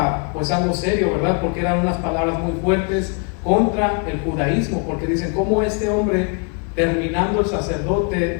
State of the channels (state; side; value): quieter; right; 35.1 dB